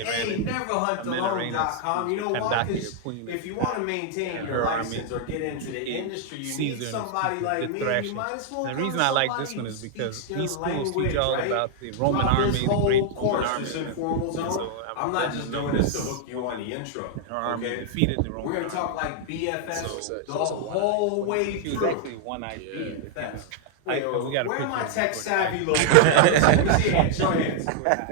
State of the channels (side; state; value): both; different; correlation -0.01